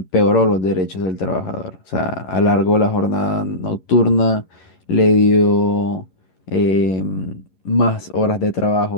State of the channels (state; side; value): late; right; 11 ms